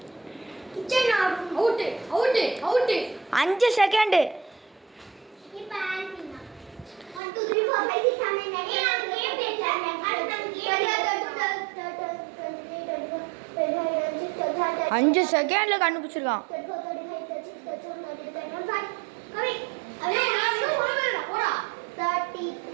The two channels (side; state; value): left; drops out; at 7.2 s